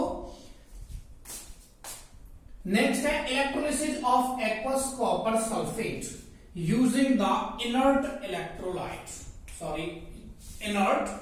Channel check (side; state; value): both; identical; correlation 1.00